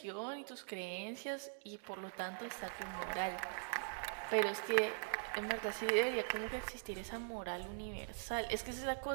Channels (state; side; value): silent; left; digital silence